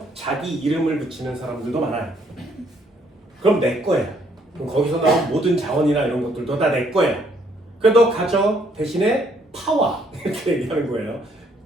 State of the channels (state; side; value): normal; both; correlation 0.67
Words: 자기 이름을 붙이는 사람들도 많아요. 그럼 내 거야. 그럼 거기서 나온 모든 자원이나 이런 것들도 다 내 거야. 그래 너 가져. 대신에 파와 이렇게 얘기하는 거예요.